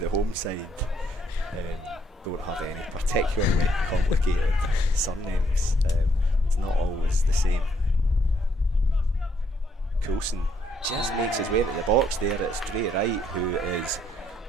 home side don't have any particularly complicated surnames. It's not always the same. Coulson just makes his way into the box there. It's Dre Wright who is,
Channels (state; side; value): normal; both; correlation 0.71